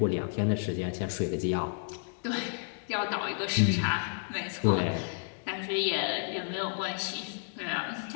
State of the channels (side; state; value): right; silent; digital silence